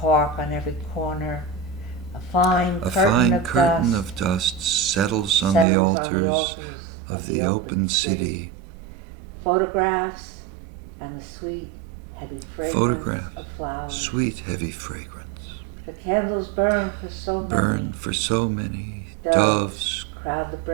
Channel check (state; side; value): drops out; left; at 5.7 s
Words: on every corner, a fine curtain of dust settles on the altars of the open city. Photographs and the sweet, heavy fragrance of flowers. Sweet, heavy fragrance. The candles burn for so many. Burn for so many. Doves crowd the